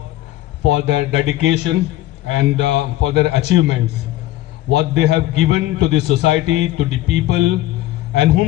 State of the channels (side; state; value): right; quieter; 15.5 dB